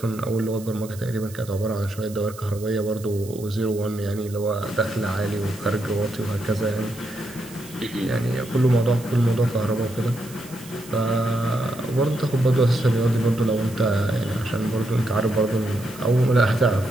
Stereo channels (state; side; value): noise; right; hiss, 19 dB below the sound